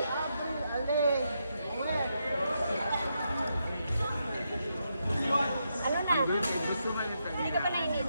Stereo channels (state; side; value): inverted; both; correlation -0.82